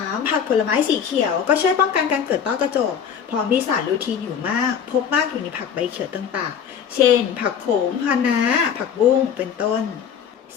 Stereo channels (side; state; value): right; quieter; 7.8 dB